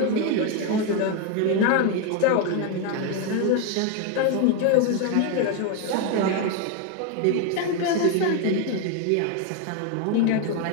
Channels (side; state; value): both; different; correlation 0.01